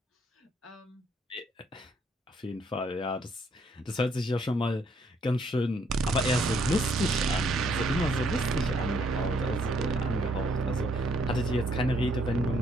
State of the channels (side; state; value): both; normal; correlation 0.69